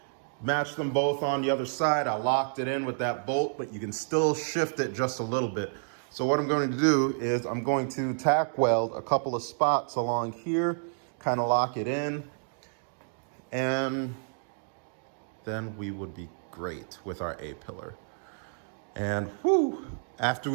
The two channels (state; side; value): silent; left; digital silence